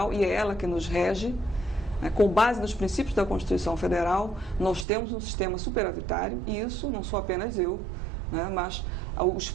e é ela que nos rege, com base nos princípios da Constituição Federal, nós temos um sistema superavitário, e isso não sou apenas eu, né, mas os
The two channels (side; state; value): left; drops out; at 4.9 s